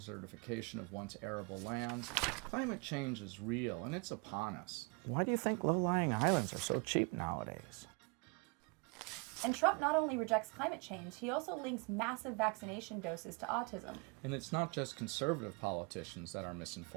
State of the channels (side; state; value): left; quieter; 29.7 dB